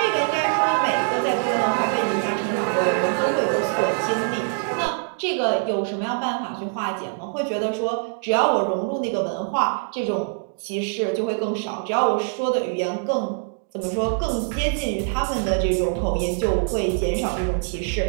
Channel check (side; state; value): left; silent; 63 dB below the other